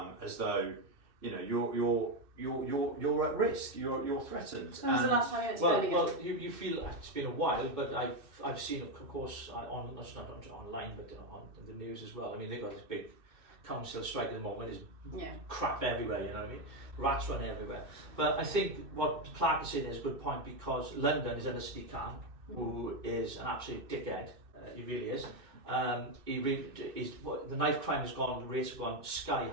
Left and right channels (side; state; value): left; late; 2.6 ms